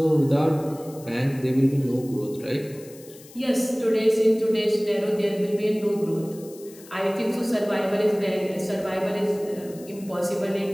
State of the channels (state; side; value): noise; left; hiss, 21 dB below the sound